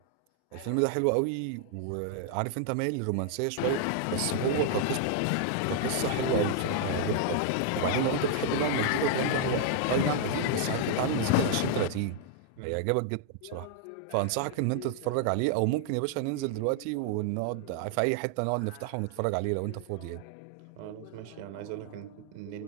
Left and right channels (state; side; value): different; both; correlation 0.00